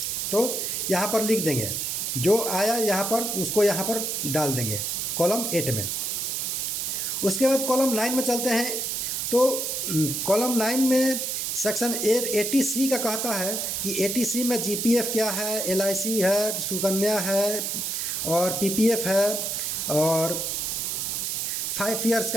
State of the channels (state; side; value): noise; right; hiss, 1 dB below the sound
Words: तो यहाँ पर लिख देंगे, जो आया यहाँ पर उसको यहाँ पर डाल देंगे कॉलम 8 में। उसके बाद कॉलम 9 में चलते हैं। तो कॉलम 9 में सेक्शन 80C का कहता है कि 80C में GPF क्या है, LIC है, सुकन्या है और PPF है और 5 ईयर्स